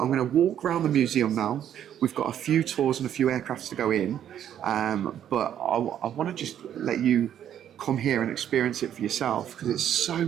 going to walk around the museum now. We've got a few tours and a few aircrafts to go in, but I want to just let you come here and experience it for yourself, because it's so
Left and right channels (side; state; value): left; quieter; 10.1 dB